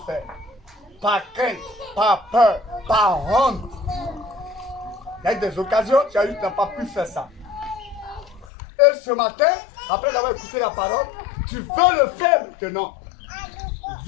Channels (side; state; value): right; drops out; at 8.5 s